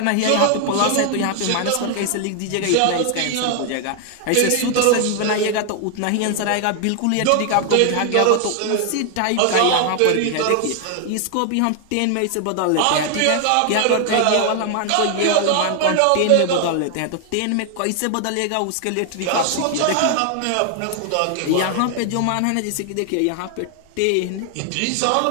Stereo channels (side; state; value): both; different; correlation 0.00